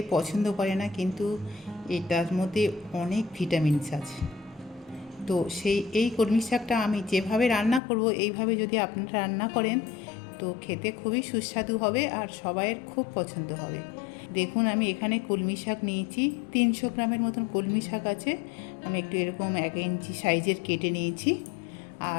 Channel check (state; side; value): drops out; right; at 7.8 s